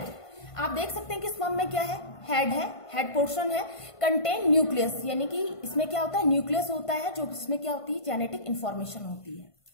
आप देख सकते हैं कि स्पर्म में क्या है, हेड है, हेड पोर्शन है, कंटेन न्यूक्लियस, यानी कि इसमें क्या होता है, न्यूक्लियस होता है, जो इसमें क्या होती है, जेनेटिक इंफॉर्मेशन होती है।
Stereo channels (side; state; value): right; late; 1.5 ms